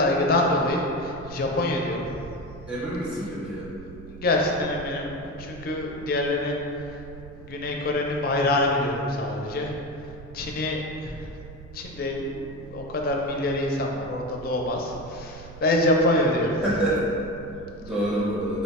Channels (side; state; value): right; noise; rumble, 16 dB below the sound